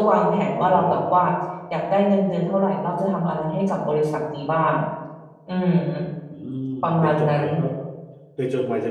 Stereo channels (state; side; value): identical; both; correlation 1.00